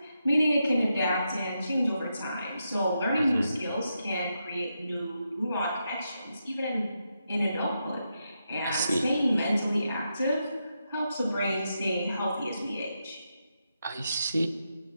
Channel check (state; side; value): inverted; both; correlation -0.85